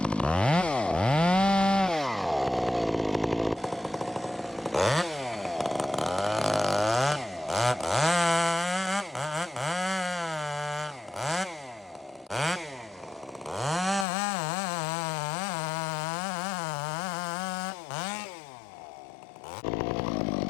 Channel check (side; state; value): right; drops out; at 14.1 s